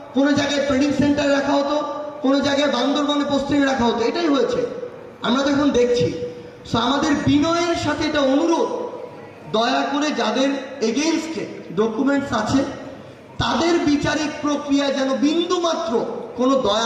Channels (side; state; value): both; identical; correlation 1.00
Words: কোনো জায়গায় ট্রেনিং সেন্টারে রাখা হতো, কোনো জায়গায় বান্দরবানে পোস্টিং রাখা হতো। এটাই হয়েছে, আমরা তো এখন দেখছি। সো আমাদের বিনয়ের সাথে এটা অনুরোধ, দয়া করে যাদের এগেইনস্টে ডকুমেন্টস আছে তাদের বিচারিক প্রক্রিয়া যেন বিন্দু মাত্র কোনো